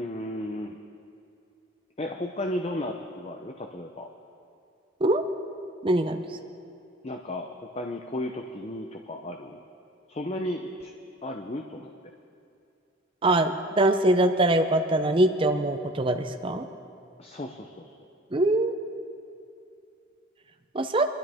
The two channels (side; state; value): both; normal; correlation 0.45